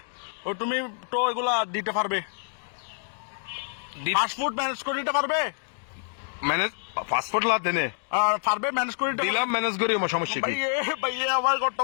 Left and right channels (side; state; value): right; silent; digital silence